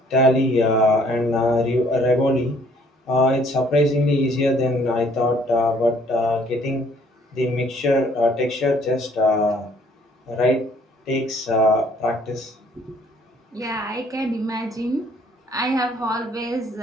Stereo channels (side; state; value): both; normal; correlation 0.61